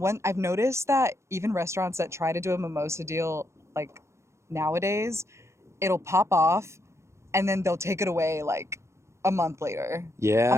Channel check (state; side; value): late; left; 0.14 ms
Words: I've noticed that even restaurants that try to do a mimosa deal, like nowadays, it'll pop off and then they'll take it away like a month later. Yeah.